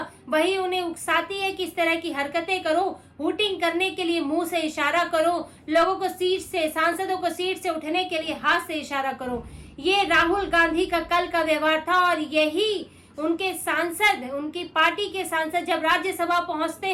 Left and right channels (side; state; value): both; identical; correlation 1.00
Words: वही उन्हें उकसाती है कि इस तरह की हरकतें करो, हूटिंग करने के लिए मुंह से इशारा करो, लोगों को सीट से, सांसदों को सीट से उठने के लिए हाथ से इशारा करो। ये राहुल गांधी का कल का व्यवहार था और यही उनके सांसद, उनकी पार्टी के सांसद जब राज्यसभा पहुंचते